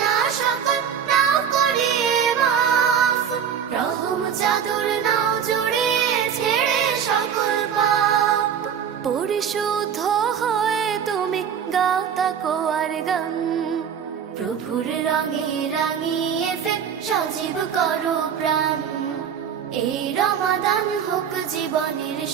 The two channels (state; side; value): quieter; left; 8.0 dB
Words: সকল নাও করে মাফ, রহম চাদর নাও জড়িয়ে ছেড়ে সকল পাপ। পরিশুদ্ধ হয়ে তুমি গাও তাকওয়ার গান। প্রভুর রঙে রাঙিয়ে ফের সজীব করো প্রাণ। এই রমাদান হোক জীবনের